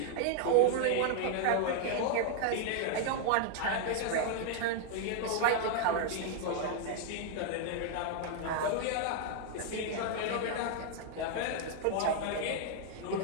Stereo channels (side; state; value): both; different; correlation 0.00